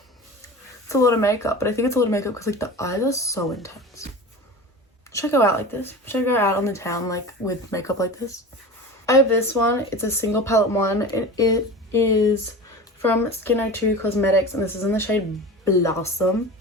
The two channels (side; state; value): both; normal; correlation 0.33